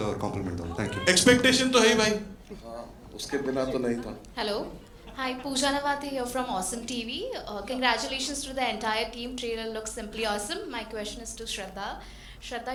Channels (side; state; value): both; identical; correlation 1.00